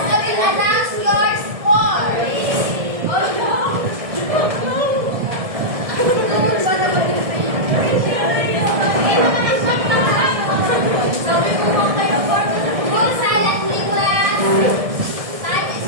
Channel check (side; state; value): left; late; 1.7 ms